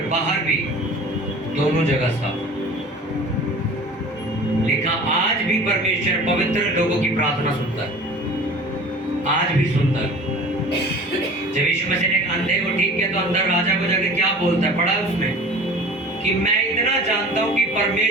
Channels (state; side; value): normal; both; correlation 0.42